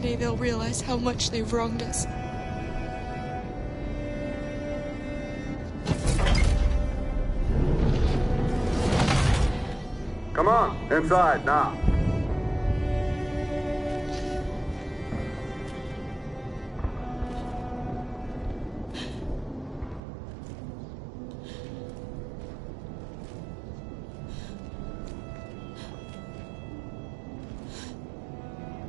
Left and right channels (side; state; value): left; drops out; at 20.0 s